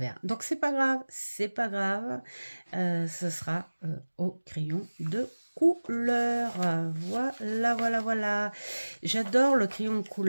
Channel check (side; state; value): both; inverted; correlation -1.00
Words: Donc c'est pas grave, ce sera au crayon de couleur. Voilà. J'adore le crayon de